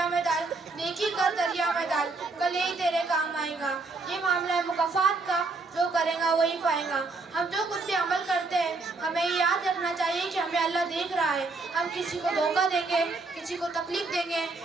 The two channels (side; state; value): left; quieter; 3.7 dB